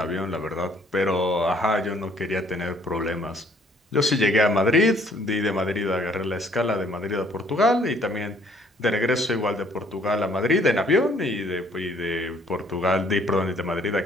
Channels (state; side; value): normal; both; correlation 0.61